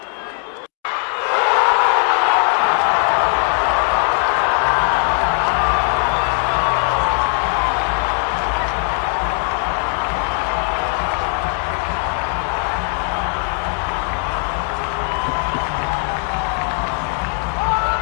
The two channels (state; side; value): quieter; right; 38.7 dB